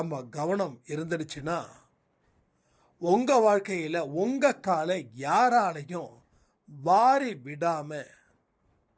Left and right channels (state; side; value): identical; both; correlation 1.00